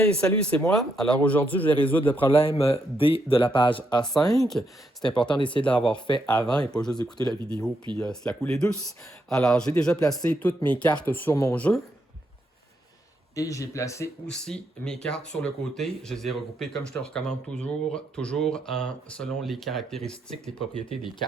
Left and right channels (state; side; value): normal; both; correlation 0.79